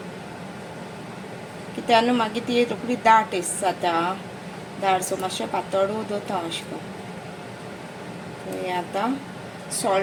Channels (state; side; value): identical; both; correlation 1.00